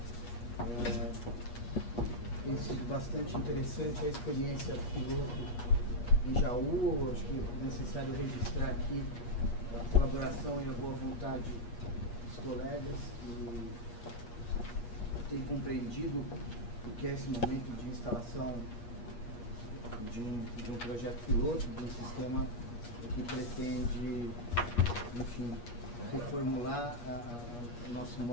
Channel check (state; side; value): late; right; 8.4 ms